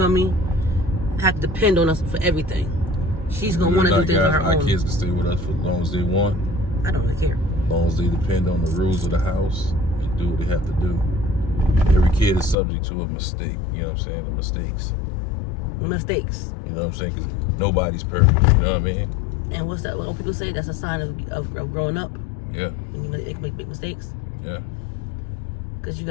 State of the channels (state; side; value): drops out; right; at 12.6 s